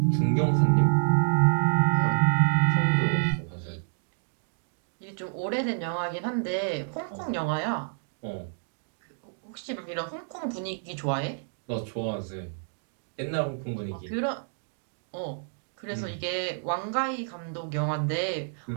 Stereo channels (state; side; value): silent; left; digital silence